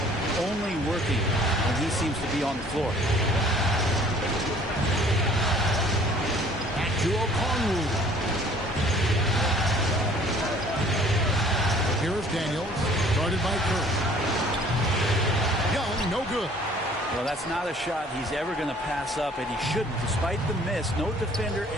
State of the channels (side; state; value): both; normal; correlation 0.54